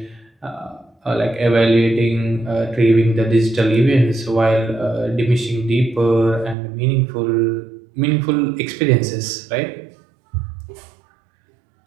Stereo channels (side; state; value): left; drops out; at 6.6 s